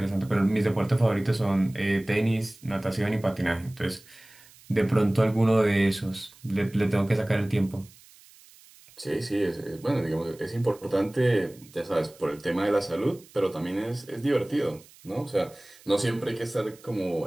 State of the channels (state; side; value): noise; right; hiss, 25 dB below the sound